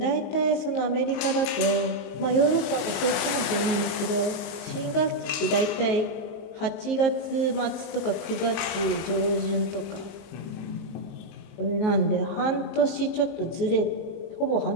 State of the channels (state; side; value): late; right; 20 ms